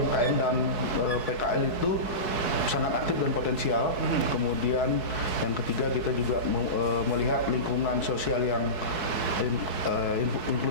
dan PKL itu sangat aktif dan potensial. Kemudian yang ketiga kita juga melihat lingkungan sosial yang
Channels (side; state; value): right; late; 4.6 ms